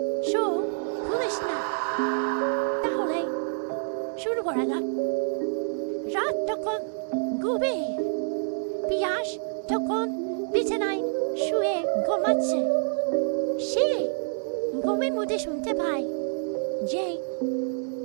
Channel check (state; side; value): silent; left; digital silence